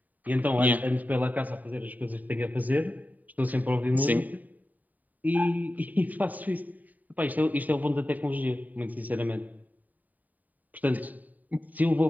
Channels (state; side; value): late; left; 0.080 ms